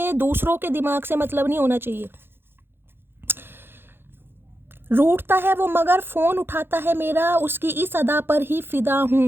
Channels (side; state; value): left; late; 0.10 ms